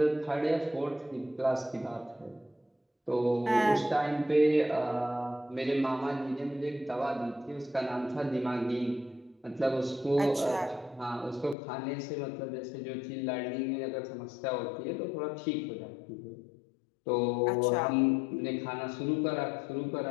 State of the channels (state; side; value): drops out; right; at 11.6 s